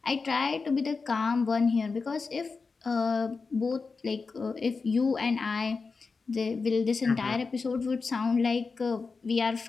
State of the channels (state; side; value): quieter; right; 4.5 dB